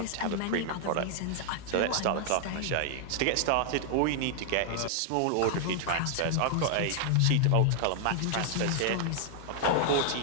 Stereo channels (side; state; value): both; different; correlation 0.00